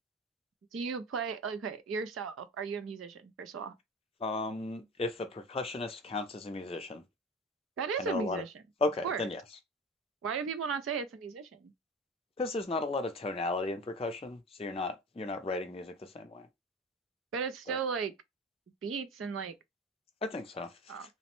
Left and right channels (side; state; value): both; normal; correlation 0.33